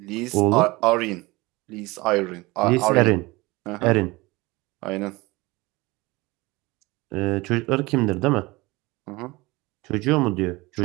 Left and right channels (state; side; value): quieter; left; 22.3 dB